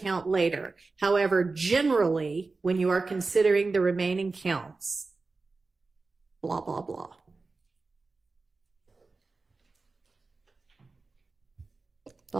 later. However, generally, when you are considering the remaining counts, blah, blah, blah.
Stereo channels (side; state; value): left; quieter; 3.8 dB